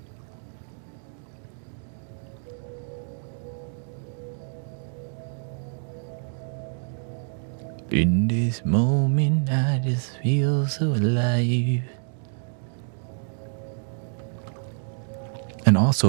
In this moment, I just feel so alive. And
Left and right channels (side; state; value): left; silent; 60 dB below the other